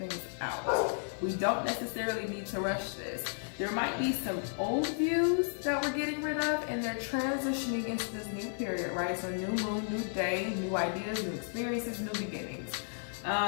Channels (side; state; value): right; silent; digital silence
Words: out. We don't necessarily need to rush this. There might be some old views that we're getting rid of, and they're transitioning into this new period, right? So new moon, new day, new ideas, new experiences, new beginnings.